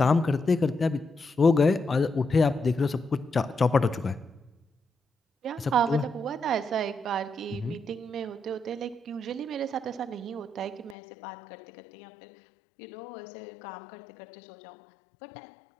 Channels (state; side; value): drops out; right; at 11.0 s